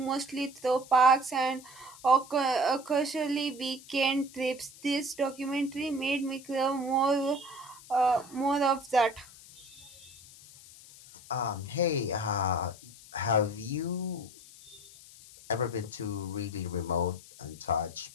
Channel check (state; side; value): noise; left; hiss, 20 dB below the sound